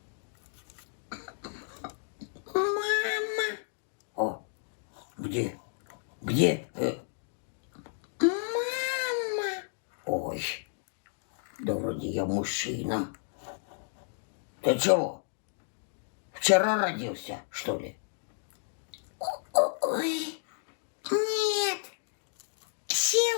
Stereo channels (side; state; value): right; silent; digital silence